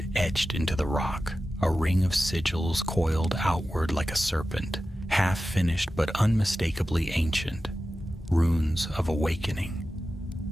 etched into the rock, a ring of sigils coiled outward like a serpent, half-finished but unmistakably ancient. Runes of awakening.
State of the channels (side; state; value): both; normal; correlation 0.94